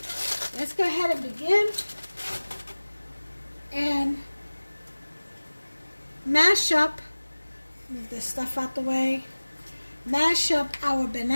let's go ahead and begin and mash up, move this stuff out the way. Mash up our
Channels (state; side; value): inverted; both; correlation -1.00